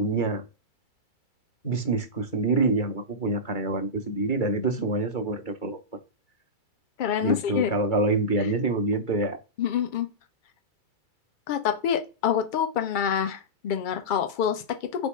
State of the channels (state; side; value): late; right; 2.3 ms